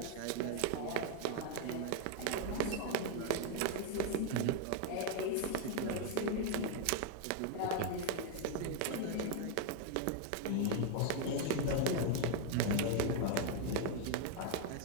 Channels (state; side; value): different; both; correlation 0.01